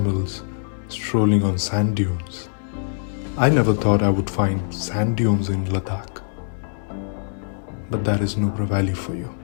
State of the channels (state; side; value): silent; right; digital silence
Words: strolling on sand dunes. I never thought I would find sand dunes in Ladakh, but that is Nubra Valley for you.